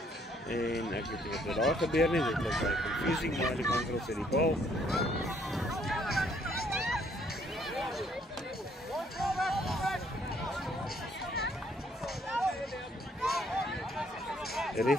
En ek weet nie wat daar gebeur nie, dit was baie confusing, maar die Mangelos het die bal. Die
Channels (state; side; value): normal; both; correlation 0.66